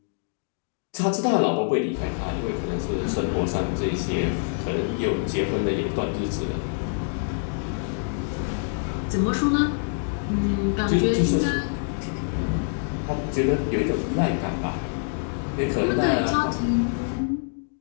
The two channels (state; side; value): silent; right; digital silence